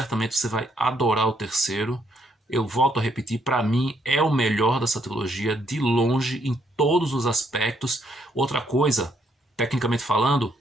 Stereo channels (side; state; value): both; normal; correlation 0.72